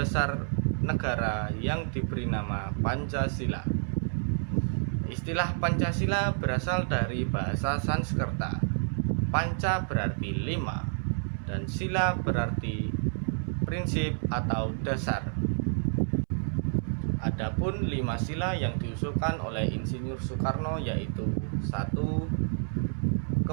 negara yang diberi nama Pancasila. Istilah Pancasila berasal dari bahasa Sanskerta. Panca berarti 5, dan sila berarti prinsip atau dasar. Adapun 5 sila yang diusulkan oleh Insinyur Soekarno yaitu 1.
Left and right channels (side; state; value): left; silent; 58 dB below the other